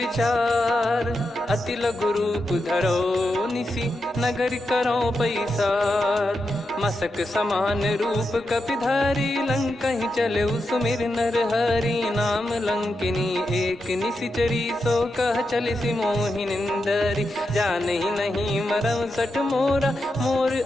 अति लघु रूप धरो निसी, नगर करो पैसार। मसक समान रूप कपि धारी, लंकहि चले सुमिर नर हरि। नाम लंकिनी एक निशिचरी, सो कह चलिसि मोहि निंदरी। जानहि नहीं मरम सठ मोरा, मोर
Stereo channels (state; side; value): normal; both; correlation 0.87